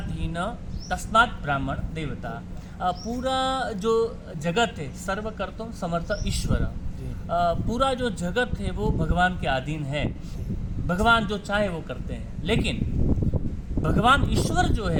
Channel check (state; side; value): identical; both; correlation 1.00